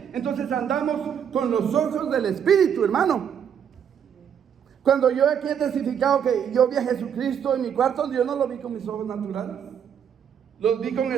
Entonces andamos con los ojos del Espíritu, hermano. Cuando yo aquí he testificado que yo vi a Jesucristo en mi cuarto, yo no lo vi con mis ojos naturales, los vi con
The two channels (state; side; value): quieter; left; 8.3 dB